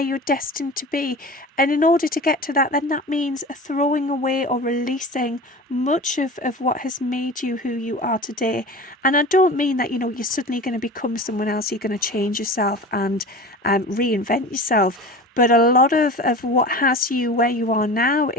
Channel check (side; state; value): both; normal; correlation 0.35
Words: you're destined to be. And in order to get to that, then that means throwing away or releasing much of what has made you who you are today. And I don't mean that, you know, you're suddenly going to become someone else, you're going to change yourself and reinvent yourself. But a lot of what has you where you are now